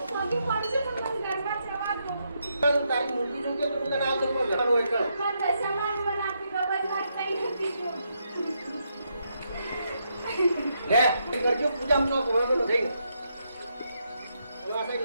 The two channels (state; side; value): inverted; both; correlation -0.79